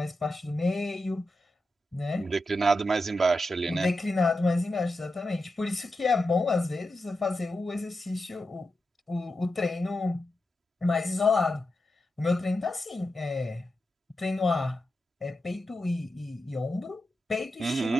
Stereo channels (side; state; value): both; normal; correlation 0.89